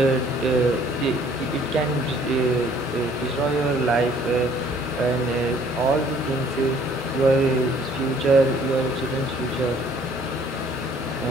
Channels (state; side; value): normal; both; correlation 0.59